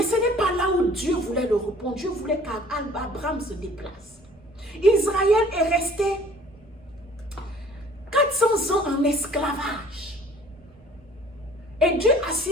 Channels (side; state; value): both; normal; correlation 0.52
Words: ce n'est pas là où Dieu voulait le répondre. Dieu voulait qu'Abraham se déplace. Israël est resté 400 ans en esclavage. Et Dieu a